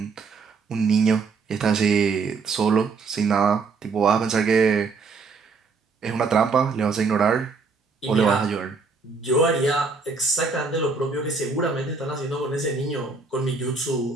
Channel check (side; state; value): left; quieter; 4.5 dB